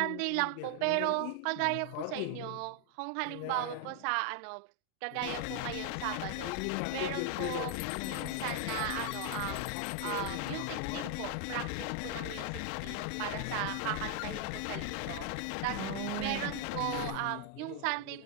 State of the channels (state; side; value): different; both; correlation 0.00